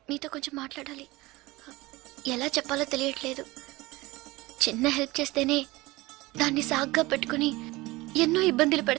మీతో కొంచెం మాట్లాడాలి. ఎలా చెప్పాలో తెలియట్లేదు. చిన్న హెల్ప్ చేస్తేనే దాన్ని సాగ్గా పెట్టుకుని ఎన్నో ఇబ్బందులు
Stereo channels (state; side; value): quieter; left; 20.8 dB